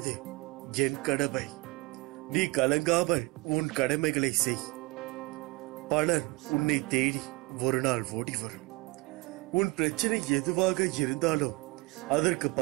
என் கடமை. நீ கலங்காமல் உன் கடமைகளை செய். பலர் உன்னை தேடி ஒரு நாள் ஓடி வரும். உன் பிரச்சனை எதுவாக இருந்தாலும் அதற்கு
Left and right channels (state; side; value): quieter; left; 24.5 dB